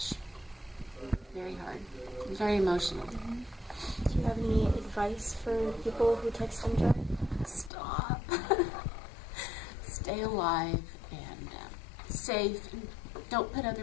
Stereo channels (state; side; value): drops out; right; at 7.7 s